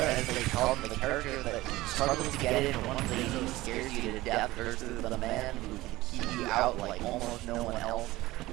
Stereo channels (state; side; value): quieter; left; 18.2 dB